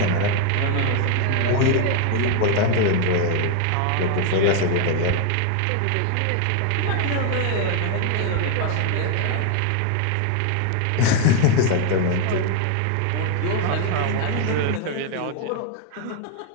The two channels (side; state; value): both; different; correlation 0.01